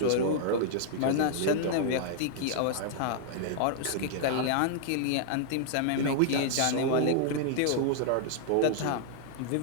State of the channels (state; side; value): different; both; correlation -0.01